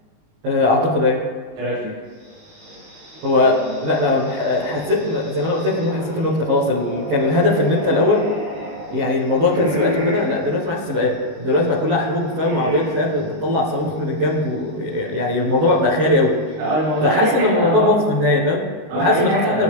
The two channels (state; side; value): late; left; 19 ms